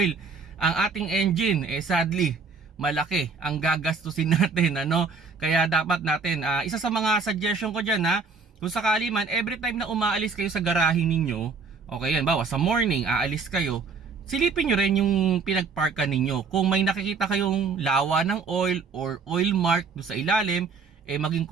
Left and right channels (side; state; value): left; quieter; 4.8 dB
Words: ang ating engine, sadly, malaki ang gagastusin natin, Kaya dapat natin, isa sa mga suggestion ko dyan, kung sakali man, every time na umaalis kayo sa garahe ninyo, okay yan, bawa sa morning, aalis kayo, silipin nyo rin yung pinagparkan ninyo. Kung may nakikita kayong lawa ng oil or oil mark do sa ilalim, maging